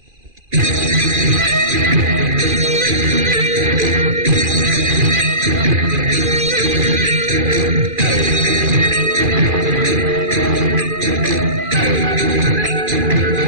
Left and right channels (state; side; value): late; left; 2.4 ms